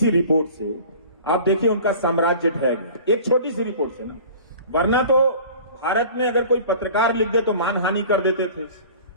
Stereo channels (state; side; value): inverted; both; correlation -0.43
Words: रिपोर्ट से आप देखिए उनका साम्राज्य ढह गया, एक छोटी सी रिपोर्ट से ना। वरना तो भारत में अगर कोई पत्रकार लिख दे तो मानहानि कर देते थे।